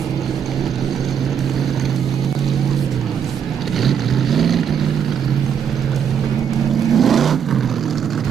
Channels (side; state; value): left; quieter; 7.9 dB